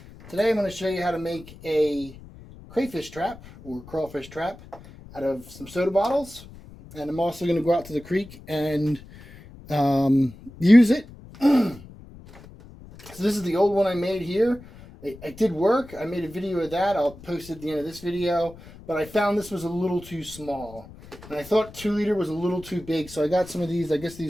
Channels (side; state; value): left; noise; rumble, 19 dB below the sound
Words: today I'm going to show you how to make a crayfish trap or crawfish trap out of some soda bottles, and I'm also going to go out to the creek and use it. So this is the old one I made here. It did work. I made a video of that. I'll post it at the end of this video, but I found this was a little too small and I thought 2 liter was a little too big, so I got some of these. I guess